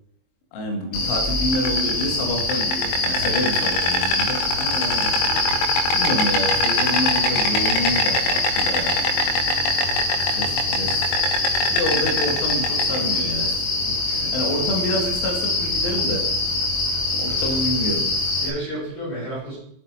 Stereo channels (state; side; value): late; right; 23 ms